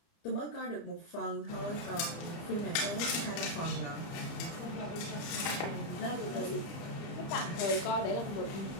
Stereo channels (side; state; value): right; late; 30 ms